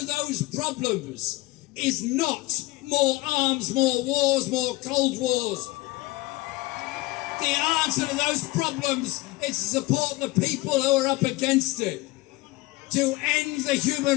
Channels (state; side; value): quieter; right; 20.7 dB